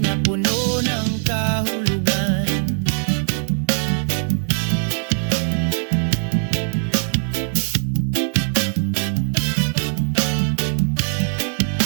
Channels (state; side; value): silent; left; digital silence